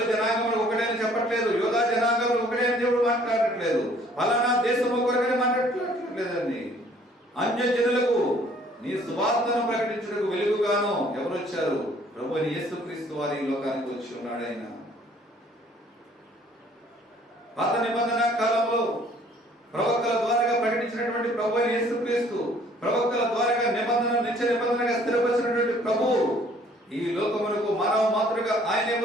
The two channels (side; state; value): both; normal; correlation 0.58